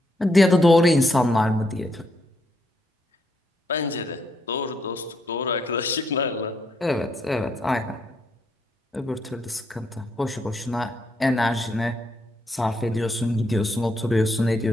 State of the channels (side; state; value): both; normal; correlation 0.76